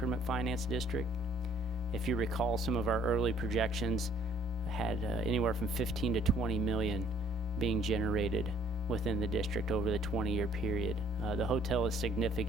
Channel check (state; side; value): normal; both; correlation 0.59